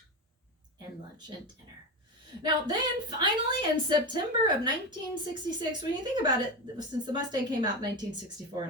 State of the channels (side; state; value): both; normal; correlation 0.19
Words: And lunch and dinner. Now, then, finally, in September of 1966, when you think about it, since the Mustang came out in 1964